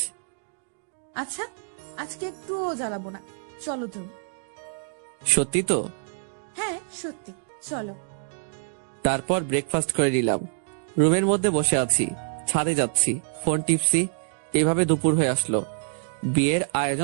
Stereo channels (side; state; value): left; silent; digital silence